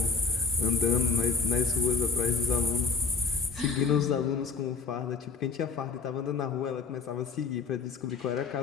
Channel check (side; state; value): right; quieter; 4.9 dB